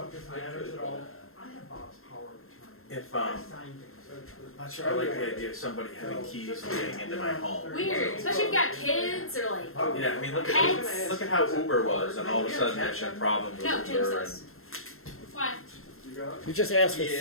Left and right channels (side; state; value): right; late; 0.62 ms